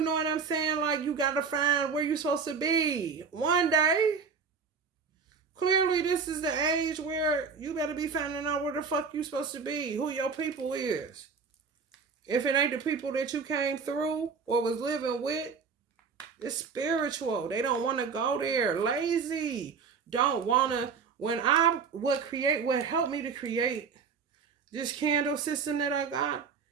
what I'm saying? Like, you got to find where you're supposed to be. One day, clearly this is the age where you better be finding out where the fuck you supposed to be. Who your people is. If it ain't the people that you came through or was living with, it's spiritual. They don't want to go there. Lazy. Don't want to. What helped me to create this candle system that I got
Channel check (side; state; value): left; quieter; 5.6 dB